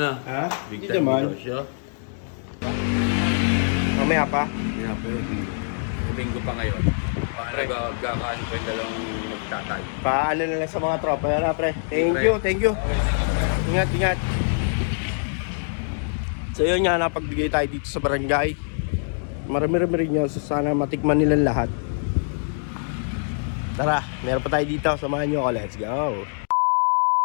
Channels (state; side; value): silent; right; digital silence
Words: Ha? Big Hindi time naman. binegosyo. Mamaya pa. Hindi na, pre. Linggo pa ngayon. Paano gagawin ko yung dalawang magtatay? Paano na lang sa mga tropa. Yan na, pre. Thank you, thank you. Ingat, ingat. So yun nga, napagbigay tayo dito sa barangay. Marami-rami rin yun. So sana matikman nilang lahat. Tara, meron pa tayo dito. Samahan nyo ako. Let's go.